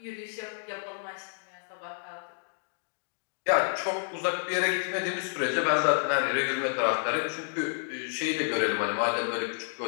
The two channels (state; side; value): silent; right; digital silence